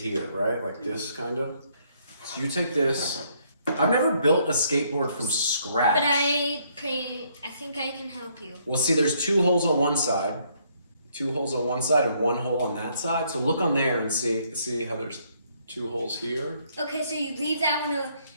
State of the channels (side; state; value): both; inverted; correlation -0.69